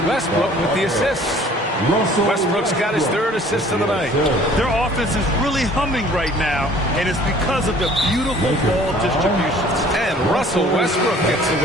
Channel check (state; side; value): normal; both; correlation 0.52